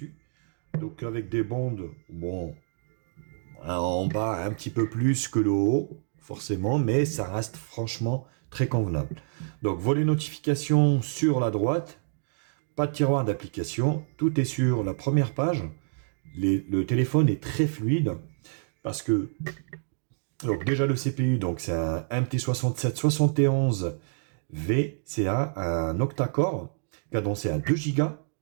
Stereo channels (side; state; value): left; silent; digital silence